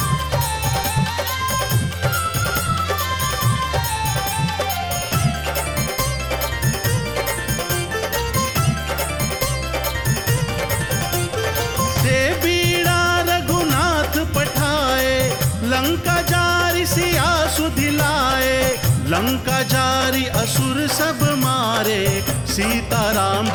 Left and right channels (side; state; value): both; identical; correlation 1.00